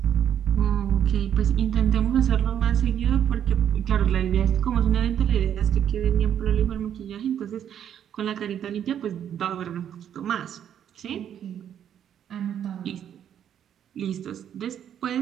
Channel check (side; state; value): left; quieter; 9.5 dB